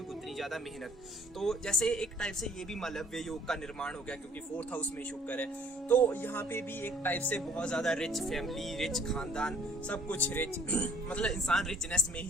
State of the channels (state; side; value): normal; both; correlation 0.57